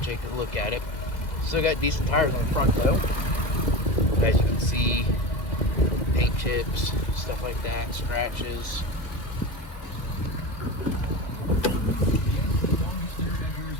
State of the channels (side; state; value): right; late; 2.0 ms